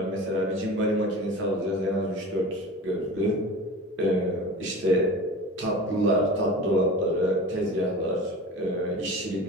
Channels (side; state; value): both; normal; correlation 0.35